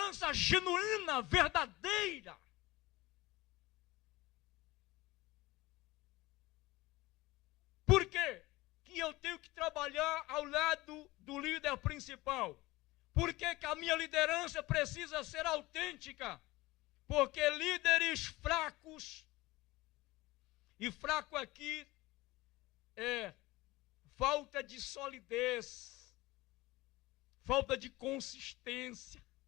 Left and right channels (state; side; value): quieter; right; 20.0 dB